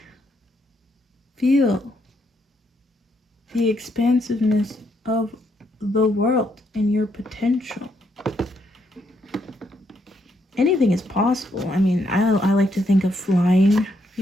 Feel the expansiveness of the world and your potential. Anything is possible. I mean, I like to think of flying,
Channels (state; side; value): normal; both; correlation 0.75